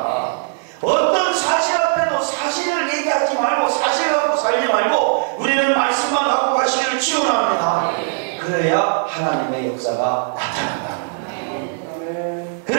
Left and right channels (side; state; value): left; silent; 66 dB below the other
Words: 어떤 사실 앞에도 사실을 얘기하지 말고 사실 갖고 살지 말고 우리는 말씀만 갖고 가시기를 축원합니다. 그래야 하나님의 역사가 나타난다는 거예요.